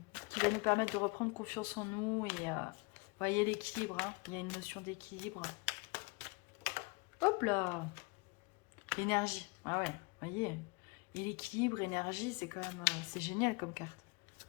qui va nous permettre de reprendre confiance en nous. Et vous voyez l'équilibre, hein, il y a une notion d'équilibre. Hop là, l'énergie, ah ouais, vous voyez. Et l'équilibre, énergie, c'est quand même c'est génial comme carte.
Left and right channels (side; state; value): right; quieter; 28.3 dB